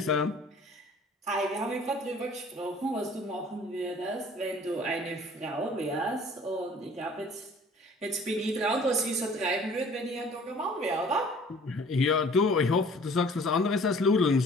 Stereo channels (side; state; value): both; normal; correlation 0.51